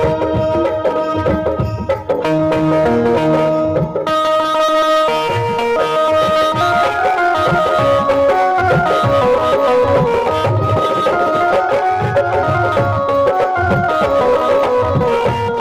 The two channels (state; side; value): identical; both; correlation 1.00